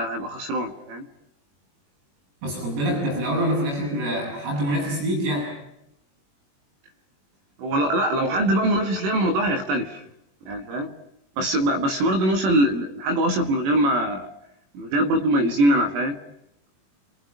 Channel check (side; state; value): left; late; 21 ms